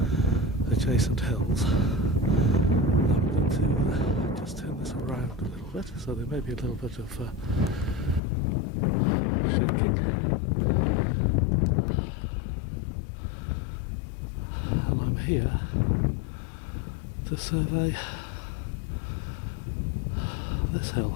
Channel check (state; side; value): drops out; right; at 8.2 s